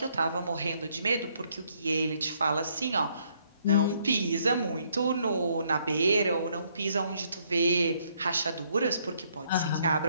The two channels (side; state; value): both; inverted; correlation -0.69